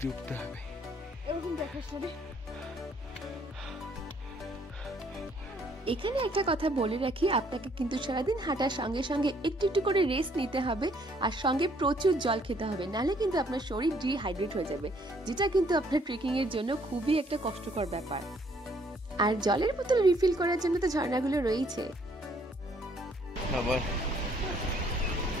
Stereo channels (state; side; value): normal; both; correlation 0.65